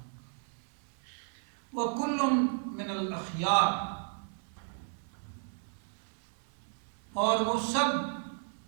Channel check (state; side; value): silent; left; digital silence